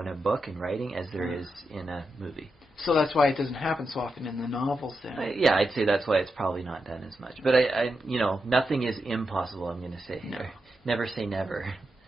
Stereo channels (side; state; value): both; normal; correlation 0.87